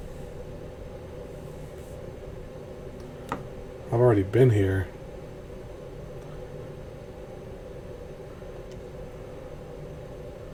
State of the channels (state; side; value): identical; both; correlation 1.00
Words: I've already been here.